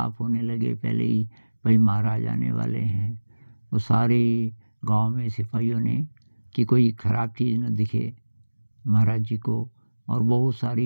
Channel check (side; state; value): both; inverted; correlation -1.00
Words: होने लगे पहले ही, भाई महाराज आने वाले हैं। वो सारे गांव में सिपाहियों ने कि कोई ख़राब चीज़ न दिखे महाराज जी को, और बहुत